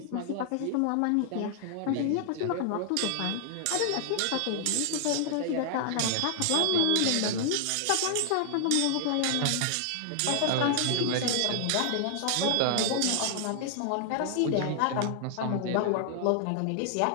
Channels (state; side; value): different; both; correlation 0.00